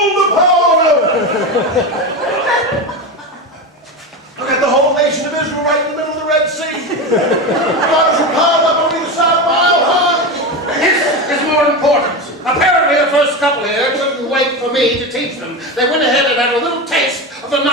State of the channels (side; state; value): both; normal; correlation 0.20